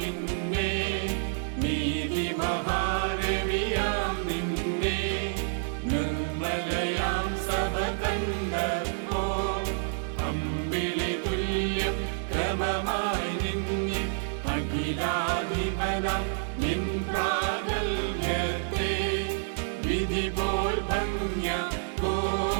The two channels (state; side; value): silent; left; digital silence